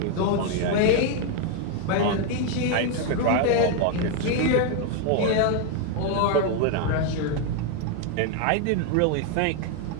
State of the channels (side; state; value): both; different; correlation 0.01